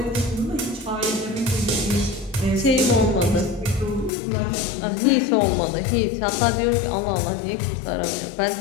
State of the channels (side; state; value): right; drops out; at 4.1 s